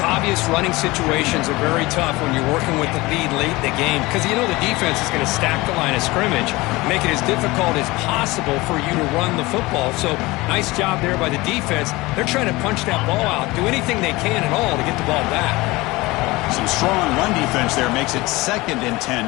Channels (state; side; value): quieter; right; 21.4 dB